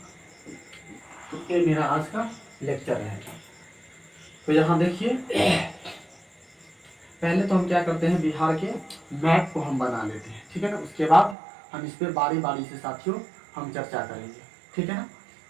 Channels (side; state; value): left; drops out; at 11.4 s